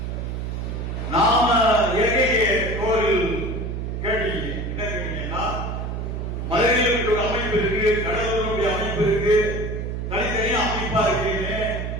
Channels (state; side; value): noise; right; hum, 4 dB below the sound